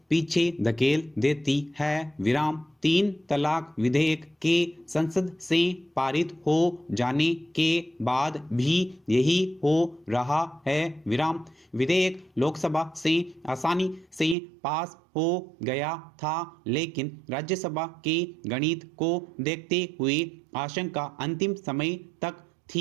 पीछे धकेल देती है। विराम 3 तलाक विधेयक के संसद से पारित हो जाने के बाद भी यही हो रहा है। विराम विधेयक लोकसभा से आसानी से पास हो गया था, लेकिन राज्यसभा के गणित को देखते हुए आशंका अंतिम समय तक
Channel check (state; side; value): drops out; left; at 14.4 s